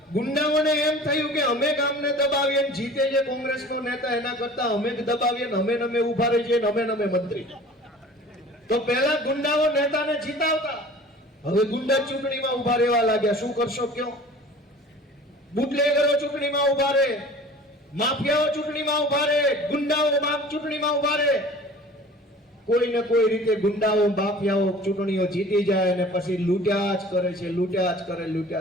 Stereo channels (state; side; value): normal; both; correlation 0.44